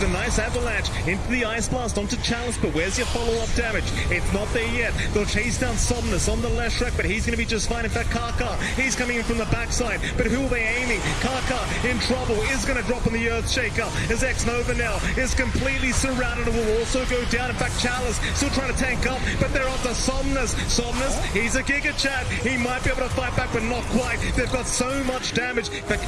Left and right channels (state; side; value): identical; both; correlation 1.00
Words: a nice avalanche into the Ice Blast onto Chalice, but where's your follow-up damage? It's not there yet. They'll chase down Somnus on the left track, but he's going to be just fine. In fact, Kaka, he's coming in from the backside, but who are they aiming? Kaka in trouble, is going to drop on the Earthshaker as X-Nova now is completely surrounded and will also go down. In fact, Chalice still trying to tank up, but they're onto Somnus. Somnus, he's a Giga Chat. He might be able to fight back, but not quite. They've got so much damage. In fact,